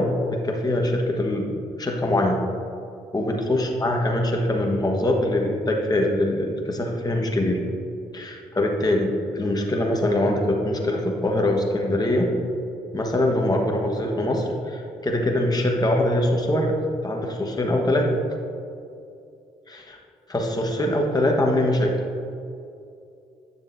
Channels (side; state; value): both; normal; correlation 0.73